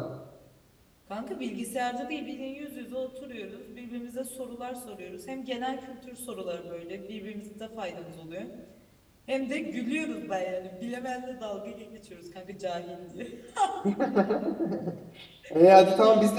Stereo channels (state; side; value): identical; both; correlation 1.00